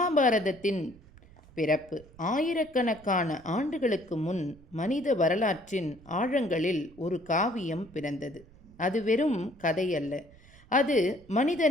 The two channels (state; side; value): noise; right; rumble, 24 dB below the sound